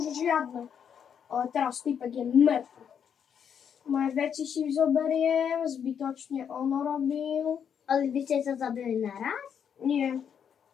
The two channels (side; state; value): right; quieter; 7.9 dB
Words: žiadne. Ale teraz typek je mŕtvy. Moje veci si zoberiem, zbytočne ono robil. Ale vy ste sa zabili naraz? Nie.